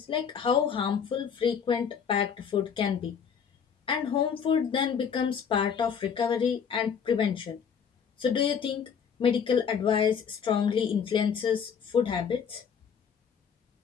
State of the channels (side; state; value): right; quieter; 7.1 dB